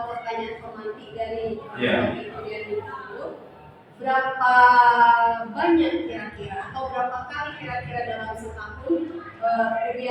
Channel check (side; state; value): both; identical; correlation 1.00